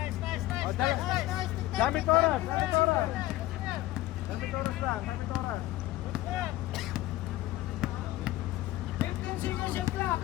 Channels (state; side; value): quieter; right; 16.3 dB